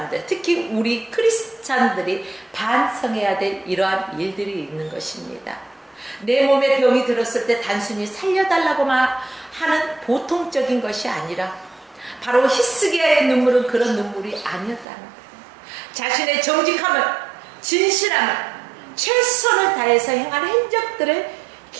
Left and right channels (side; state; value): left; drops out; at 14.9 s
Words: 특히 우리 크리스찬들이 반성해야 될 이러한 일들이 있는 것입니다. 내 몸에 병이 들었을 때 단순히 살려달라고만 하는 보통적인 것이 아니라 바로 히스기야의 눈물은 그런 눈물이 아니었다는 거예요. 자신의 정직함을, 진실함을, 최선을 다해서 행한 행적들을